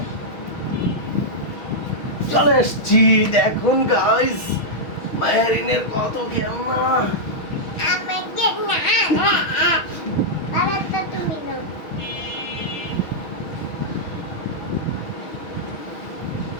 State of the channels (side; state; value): right; late; 6.3 ms